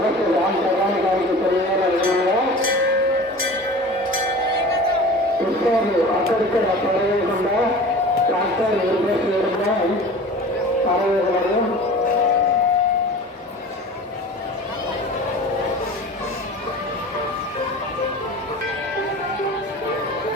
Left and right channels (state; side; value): normal; both; correlation 0.38